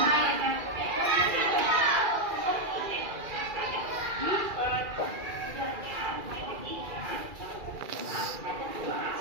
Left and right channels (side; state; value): left; late; 2.4 ms